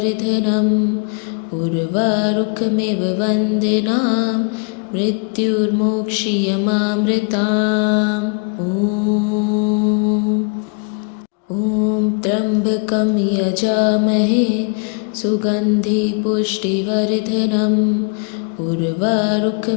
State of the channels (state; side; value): quieter; right; 36.1 dB